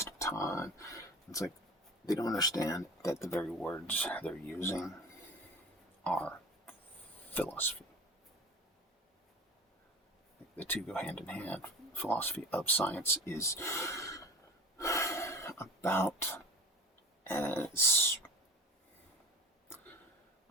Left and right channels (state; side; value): normal; both; correlation 0.37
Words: of time. It's like they don't understand that the very words they're using are philosophy. The two go hand in hand. Philosophy of science is about as,